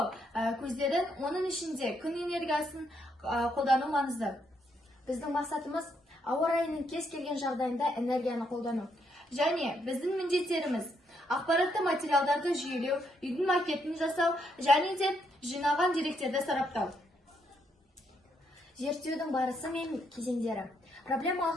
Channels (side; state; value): both; normal; correlation 0.76